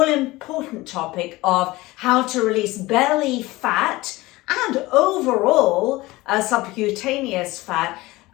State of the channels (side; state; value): right; quieter; 20.0 dB